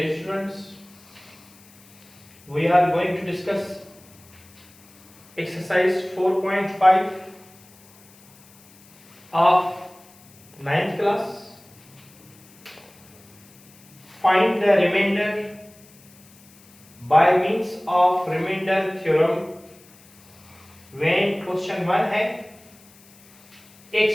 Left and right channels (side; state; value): left; noise; hiss, 26 dB below the sound